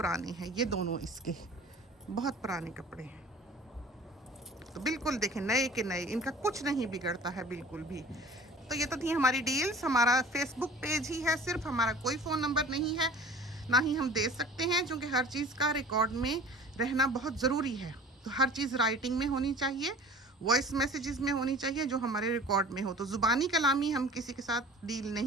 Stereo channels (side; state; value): both; normal; correlation 0.44